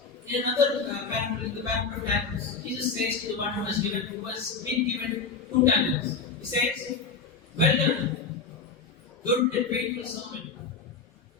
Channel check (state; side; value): quieter; right; 5.0 dB